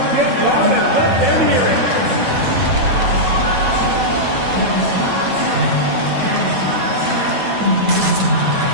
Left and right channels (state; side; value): late; left; 9.1 ms